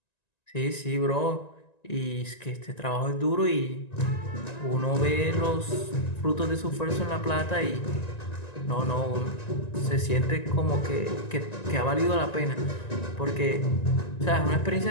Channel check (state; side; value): late; right; 1.9 ms